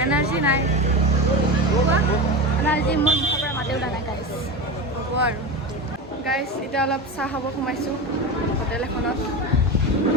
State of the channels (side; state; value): both; normal; correlation 0.23